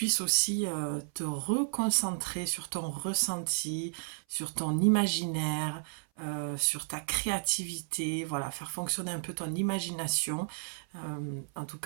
aussi te reconcentrer sur ton ressenti, sur ton imaginaire, sur ta créativité, voilà, faire fonctionner un peu ton imagination. En tout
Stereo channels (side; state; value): left; silent; 56 dB below the other